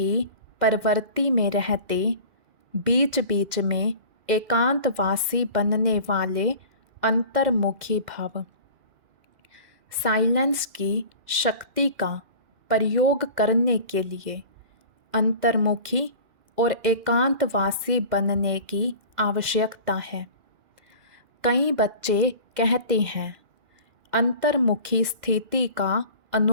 प्रवृत्ति में रहते बीच बीच में एकांतवासी बनने वाले अंतर्मुखी भव। साइलेंस की शक्ति का प्रयोग करने के लिए अंतर्मुखी और एकांतवासी बनने की आवश्यकता है। कई बच्चे कहते हैं, अंतर्मुखी स्थिति का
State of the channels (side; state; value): left; late; 2.0 ms